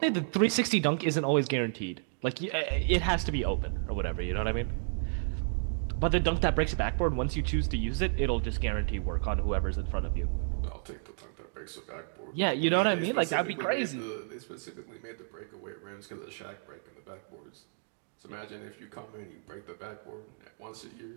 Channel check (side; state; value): left; silent; digital silence